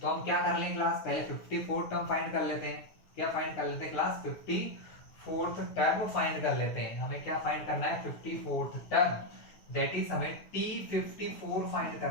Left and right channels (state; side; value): late; right; 9.6 ms